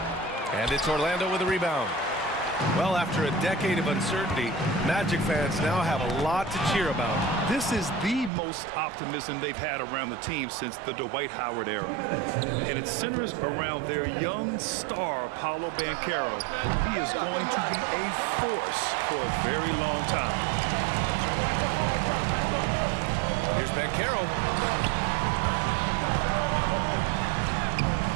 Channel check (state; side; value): drops out; left; at 8.3 s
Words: And it's Orlando with a rebound. Well, after a decade of uncertainty, Magic fans now have a lot to cheer about. This is the most optimism they've had around the team since the Dwight Howard era. And it centers around their young star, Paolo Banchero. He is going to be a force for a very long time. Here's Banchero.